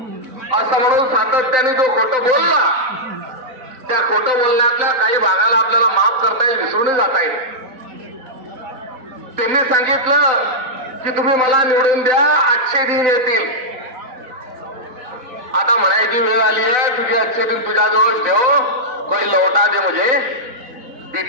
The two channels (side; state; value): left; late; 3.9 ms